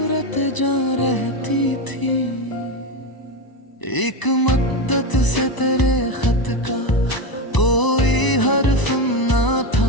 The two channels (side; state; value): right; late; 1.0 ms